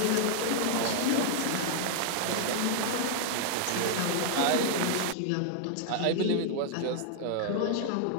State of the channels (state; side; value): different; both; correlation 0.00